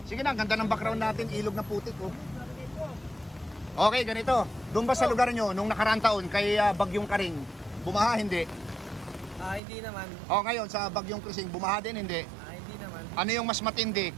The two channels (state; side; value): drops out; left; at 9.6 s